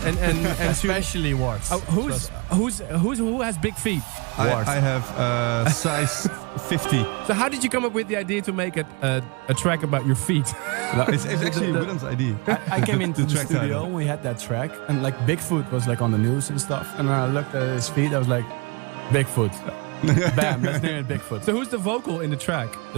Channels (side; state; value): left; quieter; 30.0 dB